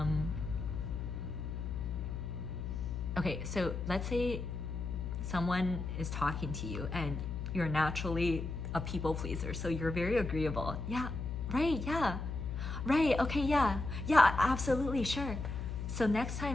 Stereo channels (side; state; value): left; noise; hum, 4 dB below the sound